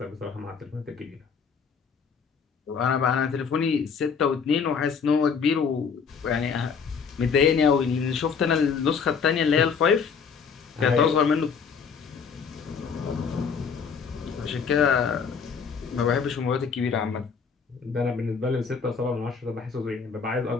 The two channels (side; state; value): right; quieter; 6.0 dB